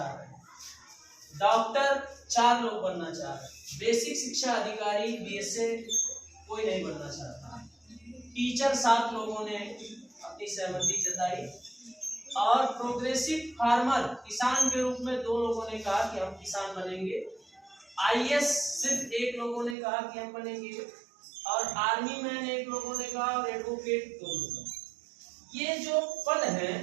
रहे हैं, डॉक्टर 4 लोग बनना चाह रहे हैं, बेसिक शिक्षा अधिकारी BSA कोई नहीं बनना चाहता, टीचर 7 लोगों ने अपनी सहमति जताई, और प्रोग्रेसिव फार्मर किसान के रूप में 2 लोगों ने कहा कि हम किसान बनेंगे, IS सिर्फ 1 लोगों ने कहा कि हम बनेंगे, और आर्मी मैन 1 लोगों ने कहा, और एडवोकेट 2 लोग। ये जो पद है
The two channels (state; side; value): drops out; left; at 19.8 s